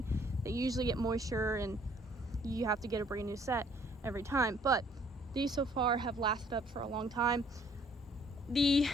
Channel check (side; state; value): both; normal; correlation 0.61